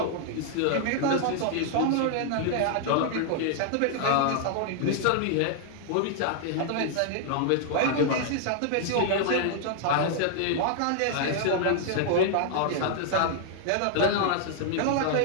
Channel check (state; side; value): different; both; correlation 0.00